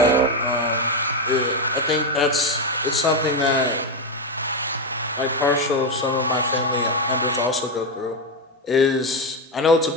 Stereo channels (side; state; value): both; normal; correlation 0.09